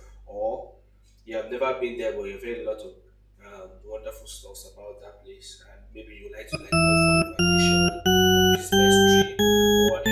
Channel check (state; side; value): identical; both; correlation 1.00